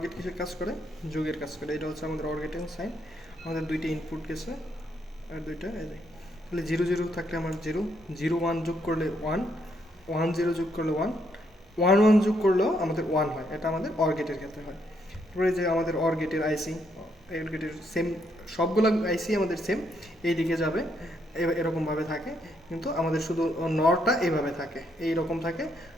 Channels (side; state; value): both; normal; correlation 0.75